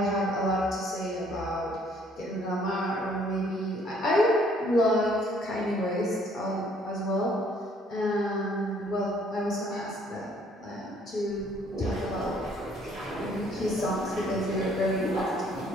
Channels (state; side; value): normal; both; correlation 0.62